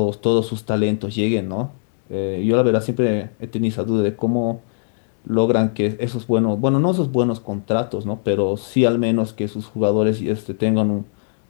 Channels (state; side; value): silent; right; digital silence